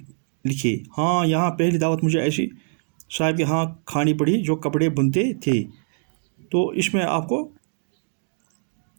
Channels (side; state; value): left; silent; 61 dB below the other